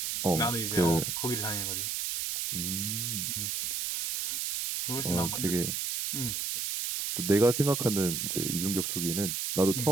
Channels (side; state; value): right; noise; hiss, 1 dB below the sound